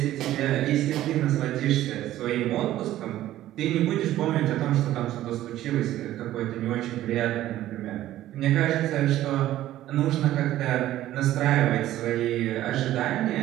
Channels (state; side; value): quieter; left; 13.9 dB